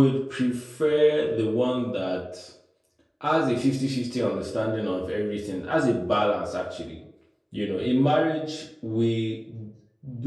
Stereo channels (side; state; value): both; identical; correlation 1.00